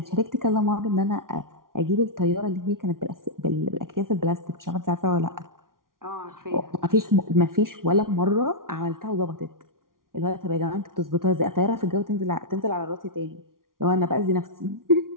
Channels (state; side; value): late; left; 0.91 ms